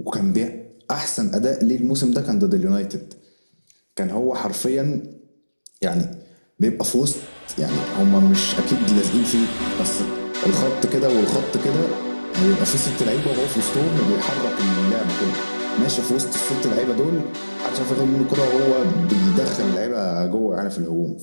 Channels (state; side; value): inverted; both; correlation -1.00